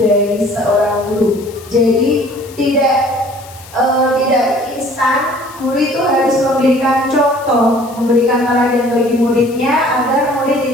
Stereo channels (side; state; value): left; noise; hiss, 21 dB below the sound